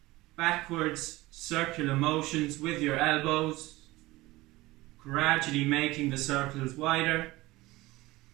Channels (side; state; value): left; quieter; 19.7 dB